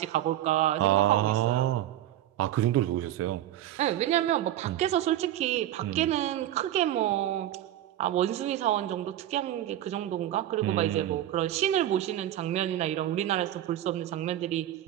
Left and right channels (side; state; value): left; quieter; 12.6 dB